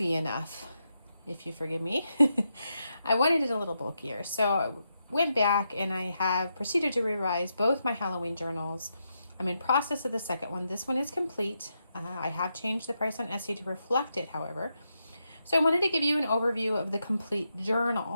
enough, if you forgive me. I wanted it a little bulkier. So I went back and I have proceeded to revise both my Halloween journals. I'm in process of the second one. This one is complete. I have changed the price on Etsy to reflect it, however. So I wanted to give you an overview of the complete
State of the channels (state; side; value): inverted; both; correlation -0.84